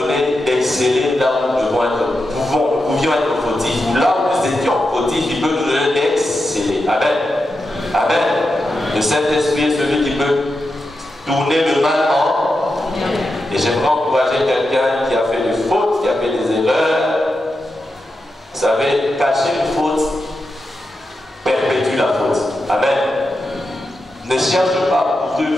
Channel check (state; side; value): normal; both; correlation 0.88